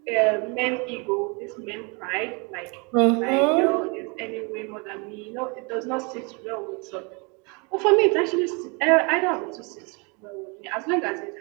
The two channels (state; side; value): quieter; left; 31.5 dB